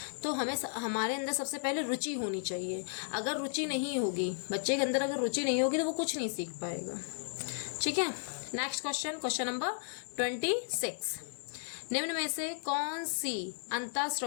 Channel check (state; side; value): silent; right; digital silence